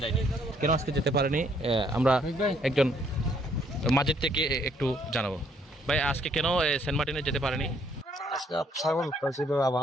যায়নি। কেন আজকে যেতে পারেনি আমরা একজন মাঝের থেকে একটু জানাবো। ভাই, আজকে কেন সেন্ট মার্টিনে যেতে পারেনি? আজকে ছাগল ছিল,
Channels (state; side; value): normal; both; correlation 0.67